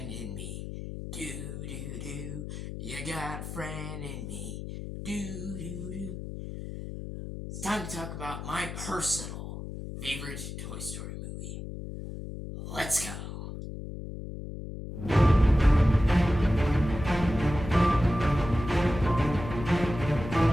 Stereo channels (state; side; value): noise; left; hum, 8 dB below the sound